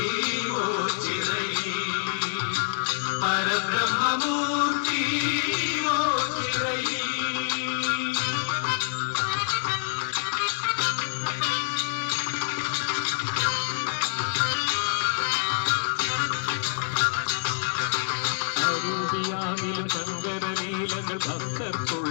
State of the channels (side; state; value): right; silent; digital silence